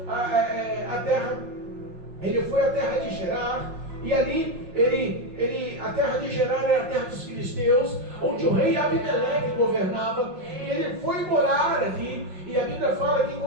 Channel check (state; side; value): late; left; 5.6 ms